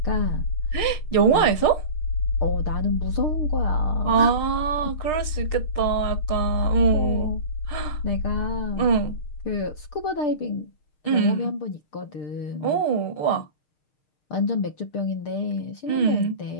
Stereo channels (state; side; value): late; right; 6.5 ms